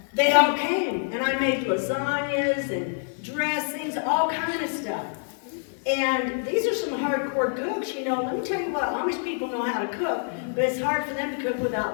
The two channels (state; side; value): silent; right; 61 dB below the other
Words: they all came, and I made lasagnas and dressings, all kind of stuff. And these are some hardcore cooks, you know. Let me tell you what, Amish people know how to cook, but it's hard for them to cook